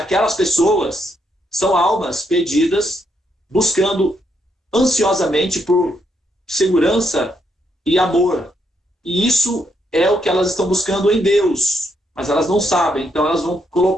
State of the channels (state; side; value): normal; both; correlation 0.77